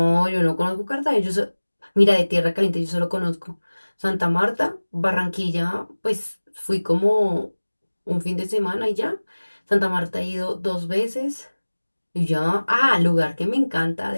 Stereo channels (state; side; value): inverted; both; correlation -1.00